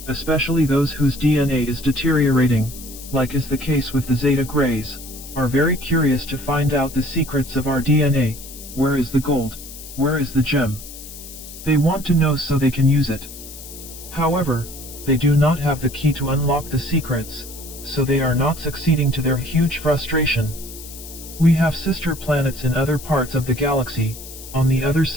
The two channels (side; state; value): left; noise; hiss, 14 dB below the sound